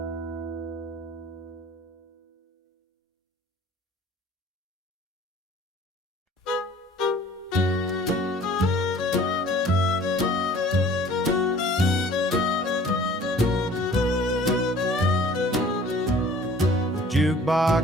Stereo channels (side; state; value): both; normal; correlation 0.51